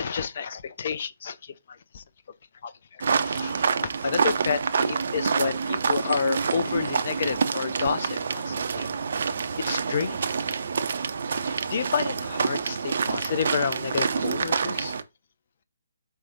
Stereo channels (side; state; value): both; inverted; correlation -0.77